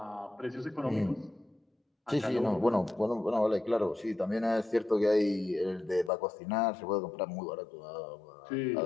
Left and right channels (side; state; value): right; drops out; at 6.1 s